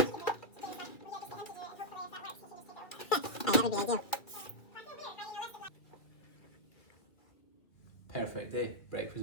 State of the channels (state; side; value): late; right; 2.3 ms